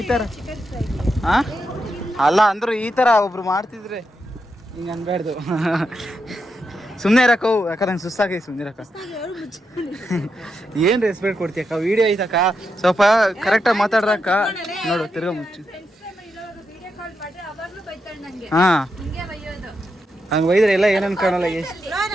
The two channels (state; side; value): normal; both; correlation 0.85